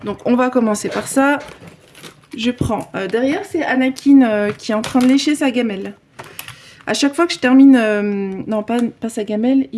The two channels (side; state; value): both; identical; correlation 1.00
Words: Donc on va commencer par ça. Je prends, derrière c'est Anakin qui est en train de lécher sa gamelle. À chaque fois que je termine, non pas sa gamelle,